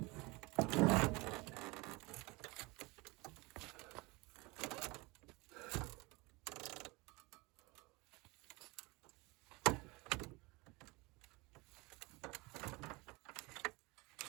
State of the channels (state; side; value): quieter; left; 25.1 dB